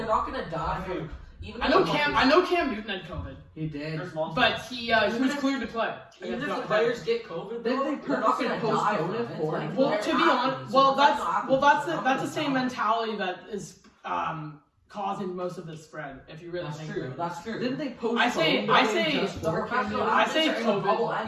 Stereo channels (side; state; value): both; identical; correlation 1.00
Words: not gonna die. Dude. even I if know the Cam. players- I know Cam Newton had COVID, He did. There's multiple. but he was cleared to play. Even if against the Notre Dame. players get COVID, Didn't though, they they're not going to purposely die postpone from it it. for Like, them? Well, they're to be honest, athletes, well, so that's they're not that's the gonna same die. mentality that is causing most of the spread. If you really That's think true. about it. That's true. Didn't they postpone? I say- just The for professional Cam Newton? I athletes say are in a COVID. bubble